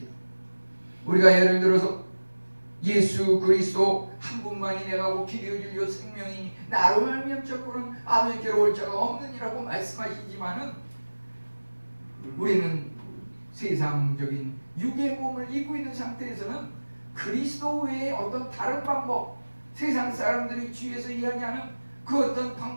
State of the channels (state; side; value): inverted; both; correlation -1.00